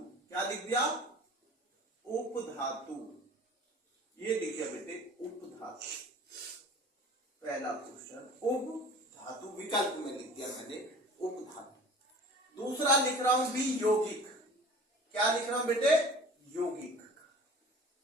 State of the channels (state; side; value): normal; both; correlation 0.43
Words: क्या लिख दिया? उपधातु, ये लिख दिया बेटे उपधातु, पहला क्वेश्चन उपधातु, विकल्प में लिख दिया मैंने उपधातु। दूसरा लिख रहा हूं भी यौगिक, क्या लिख रहा हूं बेटे? यौगिक,